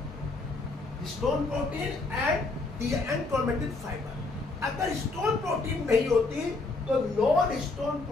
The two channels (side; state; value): right; quieter; 3.5 dB